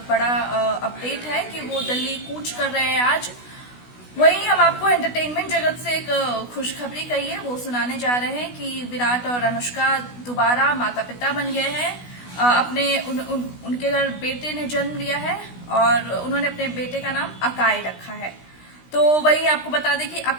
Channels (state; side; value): late; right; 16 ms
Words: बड़ा अपडेट है कि वो दिल्ली कूच कर रहे हैं आज। वहीं हम आपको एंटरटेनमेंट जगत से एक खुशखबरी कही है वो सुनाने जा रहे हैं कि विराट और अनुष्का दोबारा माता पिता बन गए हैं। उनके घर बेटे ने जन्म लिया है और उन्होंने अपने बेटे का नाम अकाय रखा है। तो वही आपको बता दें कि